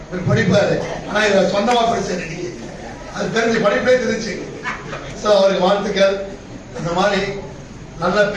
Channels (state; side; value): identical; both; correlation 1.00